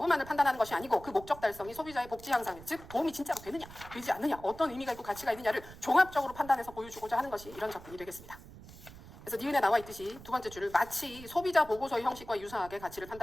판단하는 것이 아니고 그 목적 달성이 소비자의 복지 향상, 즉 도움이 진짜로 되느냐, 되지 않느냐, 어떤 의미가 있고 가치가 있느냐를 종합적으로 판단해서 보여주고자 하는 것이 이런 접근이 되겠습니다. 그래서 니은에 나와 있듯이 두 번째 줄을 마치 소비자 보고서의 형식과 유사하게 가치를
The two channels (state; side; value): noise; right; rumble, 17 dB below the sound